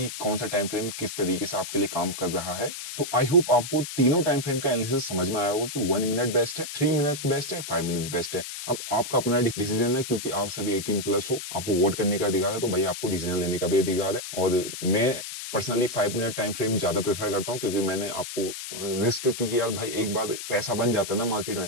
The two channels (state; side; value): noise; left; hiss, 8 dB below the sound